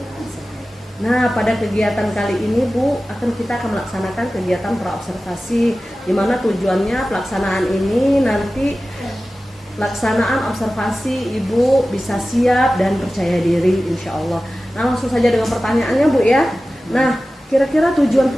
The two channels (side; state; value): both; normal; correlation 0.95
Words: Nah, pada kegiatan kali ini Bu, kita akan melaksanakan kegiatan pra-observasi, di mana tujuannya pelaksanaan ini nanti pelaksanaan observasi Ibu bisa siap dan percaya diri insya Allah. Nah, langsung saja dengan pertanyaannya Bu ya. Nah, kira-kira tujuan